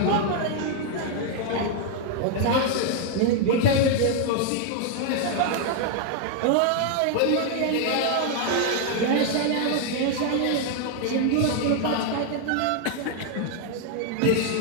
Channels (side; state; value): both; different; correlation 0.00